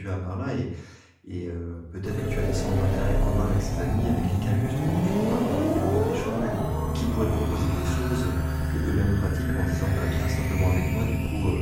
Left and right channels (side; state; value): both; identical; correlation 1.00